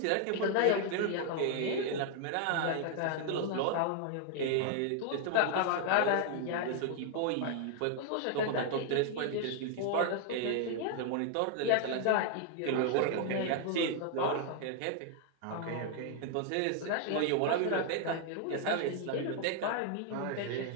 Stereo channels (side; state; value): both; different; correlation 0.00